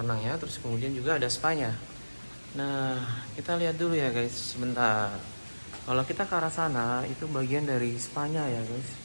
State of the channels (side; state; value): both; inverted; correlation -1.00